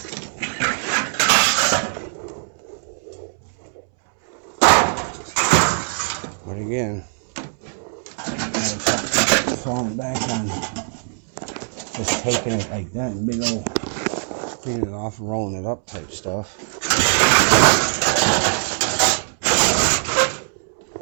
But again, falling back on just taking it like that, big old cleaning it off and rolling it up type stuff.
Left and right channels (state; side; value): silent; left; 65 dB below the other